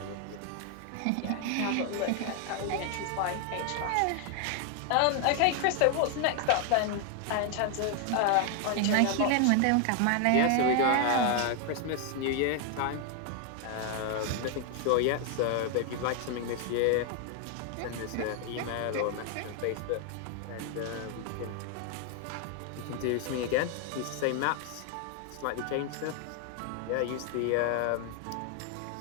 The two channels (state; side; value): different; both; correlation 0.00